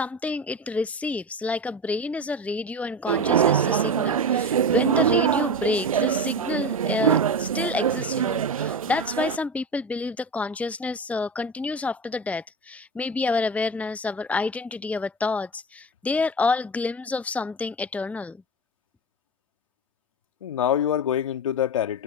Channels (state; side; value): normal; both; correlation 0.23